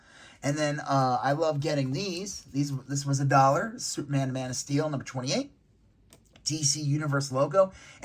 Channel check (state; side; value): identical; both; correlation 1.00